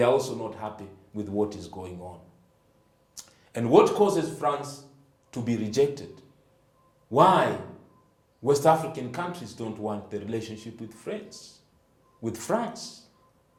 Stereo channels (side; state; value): both; identical; correlation 1.00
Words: are also not happy with what is going on. And what causes France to be rejected? Why West African countries don't want the relationship with France?